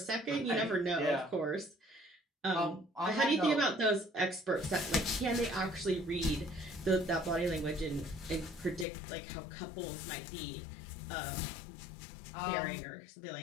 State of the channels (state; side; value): drops out; right; at 8.8 s